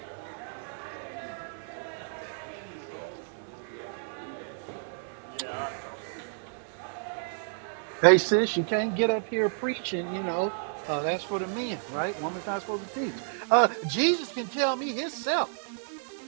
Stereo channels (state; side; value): silent; left; digital silence